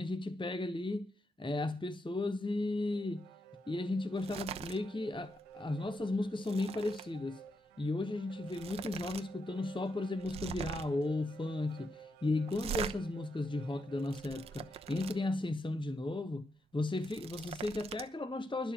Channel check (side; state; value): both; normal; correlation 0.82